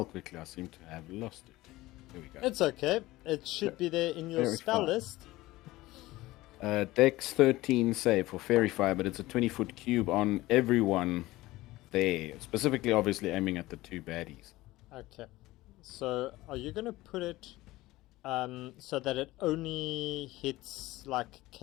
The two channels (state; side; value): quieter; right; 18.3 dB